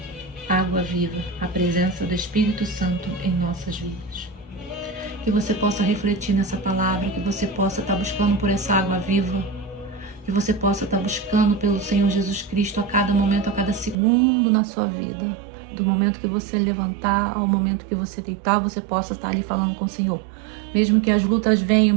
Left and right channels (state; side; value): drops out; left; at 14.0 s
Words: água viva, a presença do Espírito Santo em nossas vidas. Que você possa refletir nessa palavra, que você possa estar buscando por essa água viva, que você possa estar buscando pelo Senhor Jesus Cristo a cada momento, a cada segundo na sua vida. Do momento que você levantar ao momento que você deitar, você possa estar ali falando com o Senhor. Mesmo que as lutas venham,